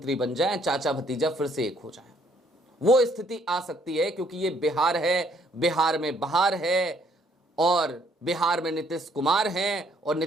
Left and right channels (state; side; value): normal; both; correlation 0.66